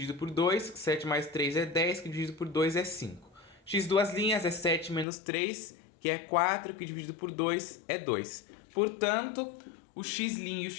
por 2. 7 mais 3 é 10, que dividido por 2 é 5. X duas linhas é 7 menos 3, que é 4, que dividido por 2 é 2. Portanto, o x' e o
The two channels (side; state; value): right; drops out; at 5.1 s